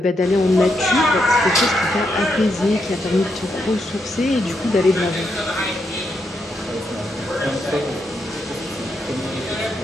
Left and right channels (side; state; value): both; normal; correlation 0.80